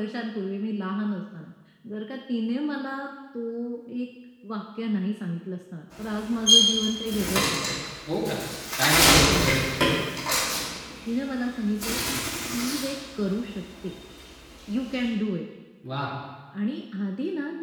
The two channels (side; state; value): both; identical; correlation 1.00